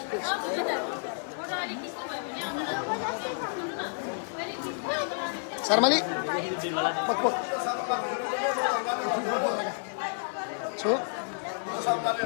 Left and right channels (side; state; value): right; silent; digital silence